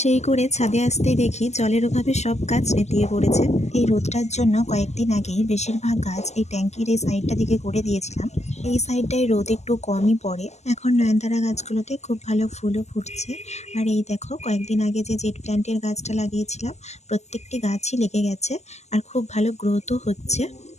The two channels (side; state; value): right; late; 0.33 ms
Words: সেই করে ছাদে আসতেই দেখি জলের অভাবে সব গাছ নেতিয়ে পড়েছে। এই রোদটার জন্য কয়েকদিন আগেই বেশিরভাগ গাছ এই ট্যাঙ্কির এই সাইডটা দিকে করে দিয়েছিলাম। এই সাইডটায় রোদ একটু কমই পড়ে। এখন নয়নতারা গাছগুলোতে খুব ভালো ফুলও ফুটছে। আর এই দেখো কয়েকদিন আগে যে জেট প্ল্যান্টের গাছটা লাগিয়েছিলাম, প্রত্যেকটি গাছই লেগে গেছে আর খুব ভালো গ্রোথও হচ্ছে।